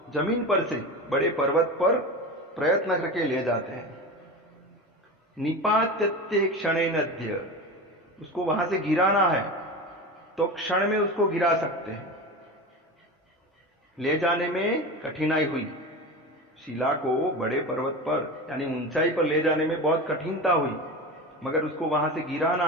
जमीन पर से बड़े पर्वत पर प्रयत्न करके ले जाते हैं। निपात्यते क्षणेनद्य, उसको वहां से गिराना है तो क्षण में उसको गिरा सकते हैं। ले जाने में कठिनाई हुई, शिला को बड़े पर्वत पर यानी ऊंचाई पर ले जाने में बहुत कठिनता हुई, मगर उसको वहां से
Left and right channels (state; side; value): normal; both; correlation 0.27